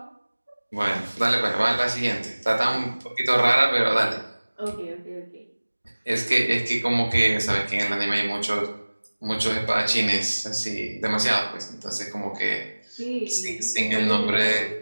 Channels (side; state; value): both; inverted; correlation -1.00